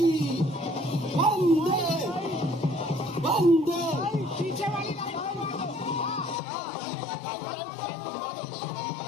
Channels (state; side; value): drops out; right; at 6.4 s